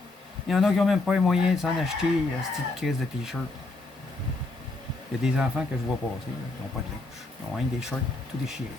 Il y en a qui n'ont même pas les moyens de s'en acheter à cette petite crise de t-shirt. Il y a des enfants que je vois passer, là, qui n'ont pas de linge. Ils ont rien que des shirts tout déchirés.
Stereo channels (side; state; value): right; quieter; 3.1 dB